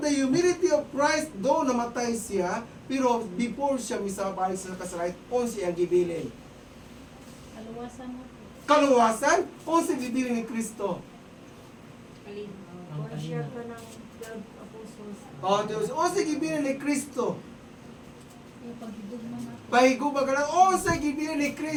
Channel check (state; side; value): identical; both; correlation 1.00